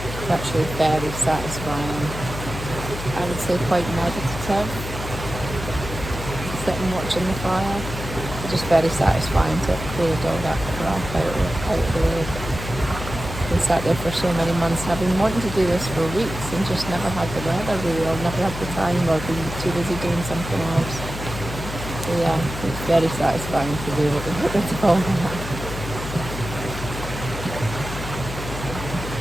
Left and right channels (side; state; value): left; noise; hum, 8 dB below the sound